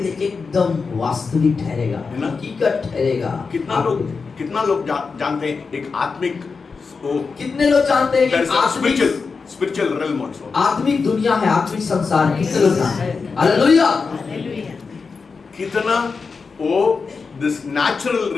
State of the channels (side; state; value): right; quieter; 4.9 dB